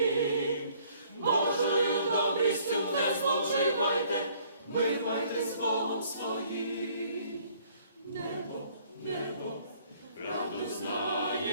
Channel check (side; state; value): both; inverted; correlation -0.60